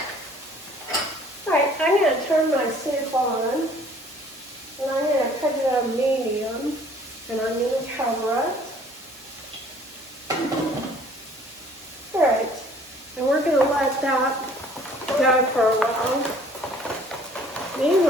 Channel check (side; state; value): both; normal; correlation 0.55